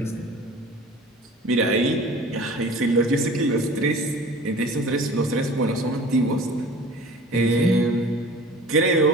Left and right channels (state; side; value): normal; both; correlation 0.43